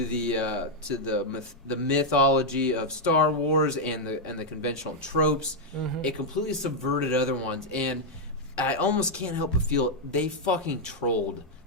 the mythology of Star Wars and the conventional tropes, it completely subverted other ones. And I almost can't help but feel they fucking trolled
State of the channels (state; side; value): normal; both; correlation -0.01